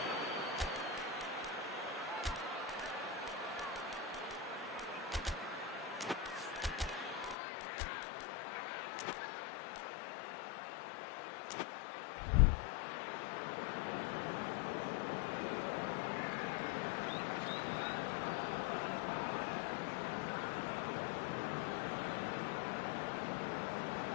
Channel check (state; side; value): drops out; right; at 7.4 s